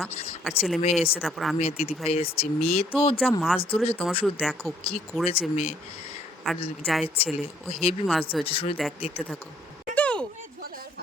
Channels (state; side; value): normal; both; correlation 0.64